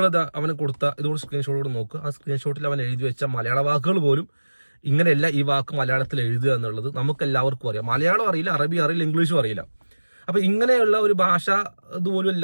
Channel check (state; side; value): inverted; both; correlation -1.00